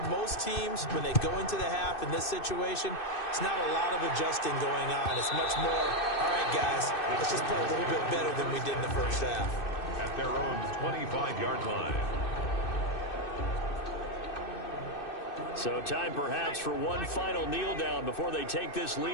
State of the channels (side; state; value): right; late; 2.6 ms